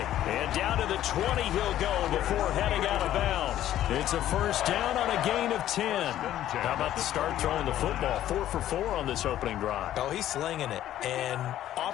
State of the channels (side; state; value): right; quieter; 12.5 dB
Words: And down to the 20 he'll go before heading out of bounds. It's a first down on a gain of 10. How about the start throwing the football? 4 for 4 on this opening drive. Oh, he's slinging it. And